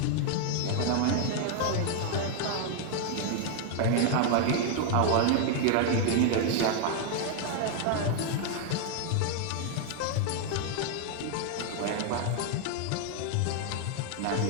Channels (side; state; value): both; different; correlation 0.00